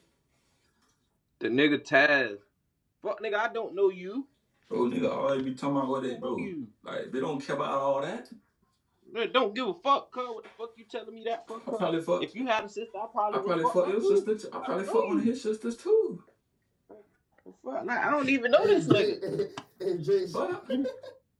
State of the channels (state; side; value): identical; both; correlation 1.00